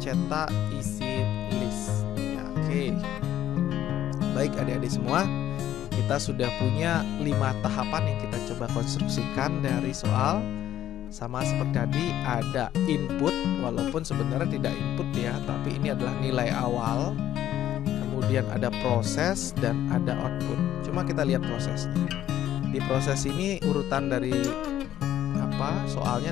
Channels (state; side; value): quieter; right; 12.0 dB